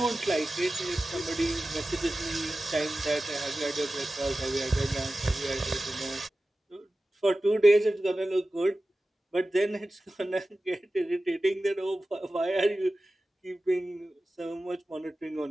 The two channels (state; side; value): normal; both; correlation 0.95